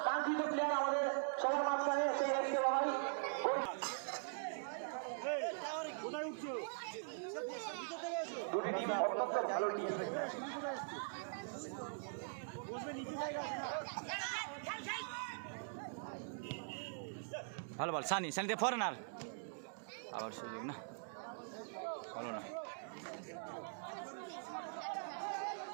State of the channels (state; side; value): silent; left; digital silence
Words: কাঙ্ক্ষিত প্লেয়ার আমাদের সবার মাঝখানে সেই এসকে বাবাই। দুটি টিম অত্যন্ত ভালো টিম। ভালো বল, সানি, সানিতে ফরেনার, আবার সুযোগ না, হলো না।